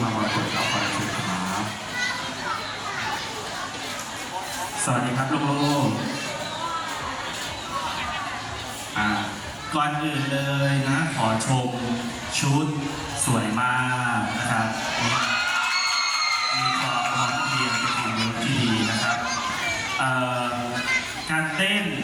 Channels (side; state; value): both; identical; correlation 1.00